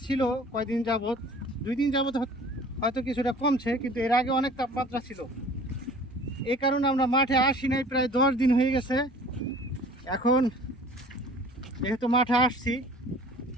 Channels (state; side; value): normal; both; correlation 0.48